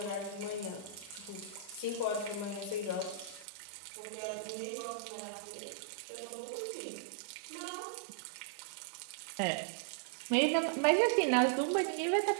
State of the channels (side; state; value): left; drops out; at 3.5 s